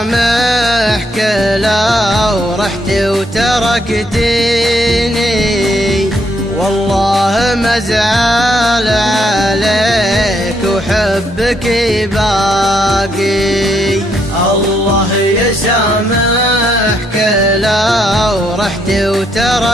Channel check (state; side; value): normal; both; correlation 0.74